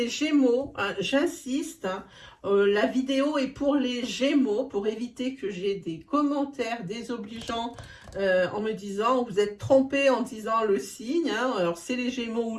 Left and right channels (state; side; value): identical; both; correlation 1.00